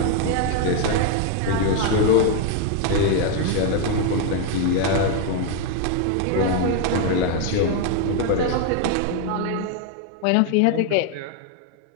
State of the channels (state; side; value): different; both; correlation 0.01